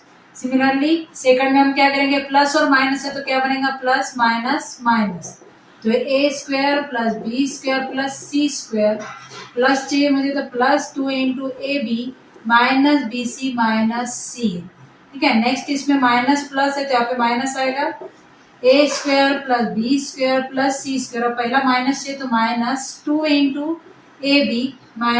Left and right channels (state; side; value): identical; both; correlation 1.00